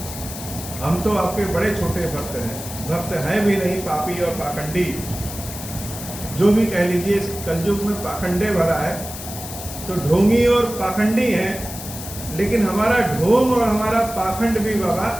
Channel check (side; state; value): left; noise; hiss, 10 dB below the sound